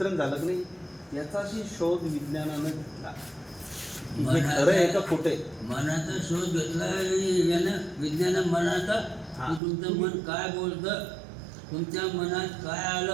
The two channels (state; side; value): drops out; left; at 9.6 s